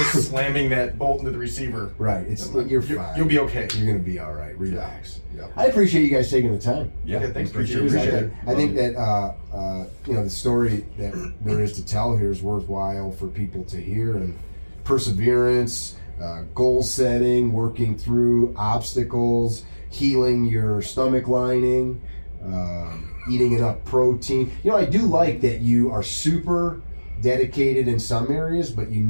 slamming that bolt into the receiver. Right, you're fine. You'll be okay. You're gonna be all right. Relax. Yep. I appreciate you guys taking the time. Yeah, Okay, thanks. appreciate Appreciate it. it. I think that the story that there is to tell here is worthwhile for people to hear, and perseverance, goal setting, working through obstacles, healing your stomach lining, eating enough protein. You know, I do like that you are super dedicated in some areas, but you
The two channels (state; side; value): inverted; both; correlation -1.00